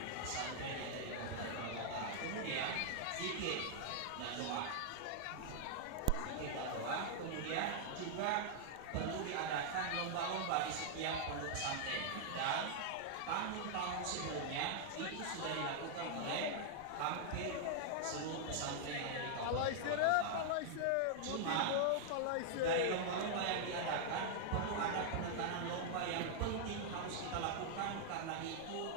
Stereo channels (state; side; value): different; both; correlation -0.01